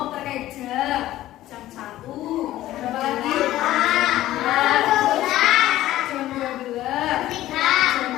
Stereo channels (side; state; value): right; quieter; 14.7 dB